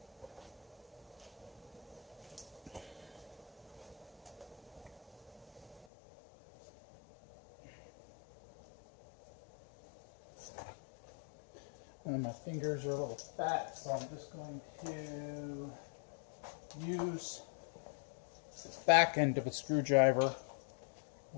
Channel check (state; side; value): drops out; right; at 5.9 s